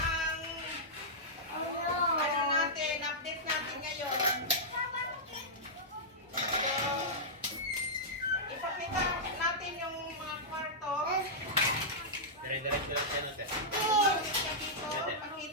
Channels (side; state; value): both; normal; correlation -0.11